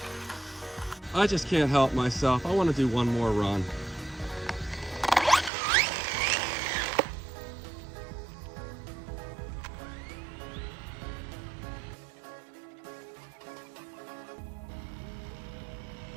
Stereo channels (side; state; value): left; drops out; at 5.5 s